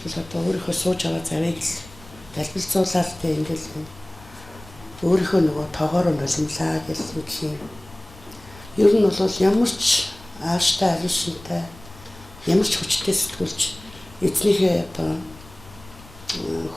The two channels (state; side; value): noise; left; rumble, 21 dB below the sound